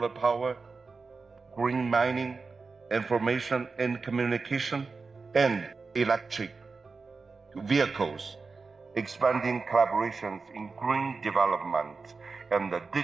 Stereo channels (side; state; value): left; quieter; 4.4 dB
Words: power, green mining, information and communication, and electric vehicles, expanding collaborations in green development and the